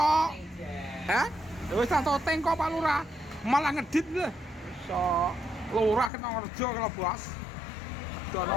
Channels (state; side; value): drops out; right; at 6.1 s